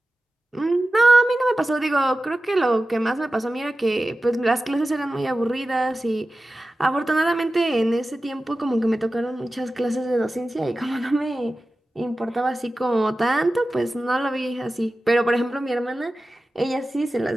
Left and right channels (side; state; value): both; normal; correlation 0.95